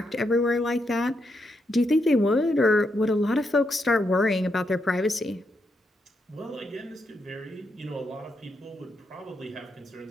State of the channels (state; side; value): normal; both; correlation 0.81